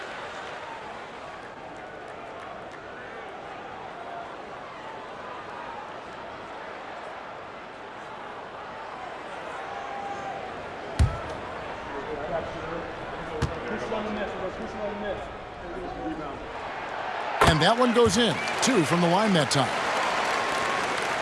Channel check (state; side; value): identical; both; correlation 1.00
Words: And that one goes in. 2 from the line that time.